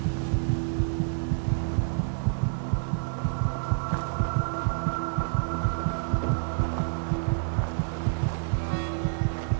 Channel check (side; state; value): left; silent; digital silence